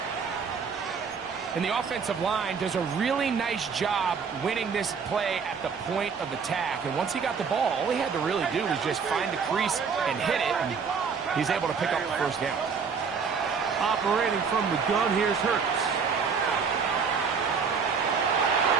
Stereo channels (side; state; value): left; quieter; 5.9 dB